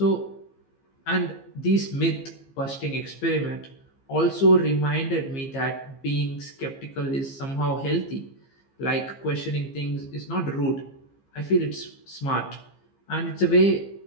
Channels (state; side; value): late; right; 15 ms